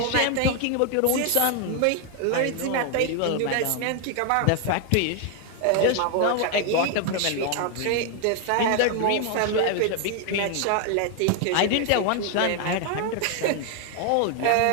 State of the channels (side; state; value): both; different; correlation 0.00